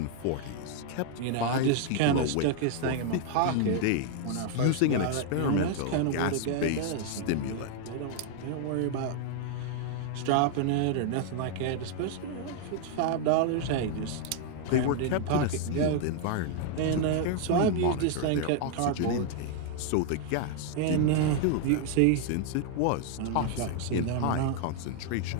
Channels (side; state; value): both; different; correlation 0.00